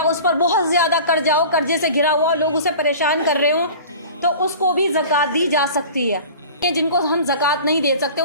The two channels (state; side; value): inverted; both; correlation -0.39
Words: اس پر بہت زیادہ قرضے سے گھرا ہوا لوگ اسے پریشان کر رہے ہوں, تو اس کو بھی زکوٰۃ دی جا سکتی ہے. جن کو ہم زکوٰۃ نہیں دے سکتے